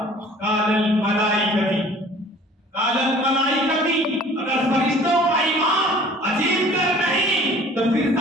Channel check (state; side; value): normal; both; correlation 0.50